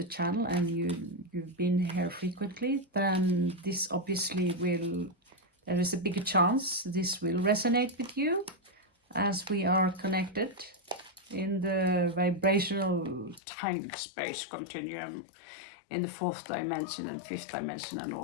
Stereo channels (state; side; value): drops out; right; at 13.4 s